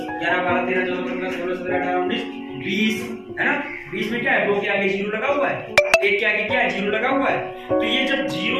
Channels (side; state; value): both; identical; correlation 1.00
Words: 11 12 13 14 15 16 17 18 19 20, है ना। 20 में क्या है, 2 के आगे 0 लगा हुआ है, 1 के आगे क्या है, 0 लगा हुआ है। तो ये जब